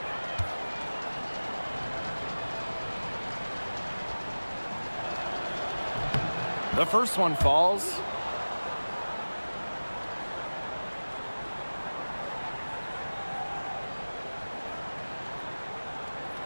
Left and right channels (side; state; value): both; inverted; correlation -1.00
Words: The first one falls.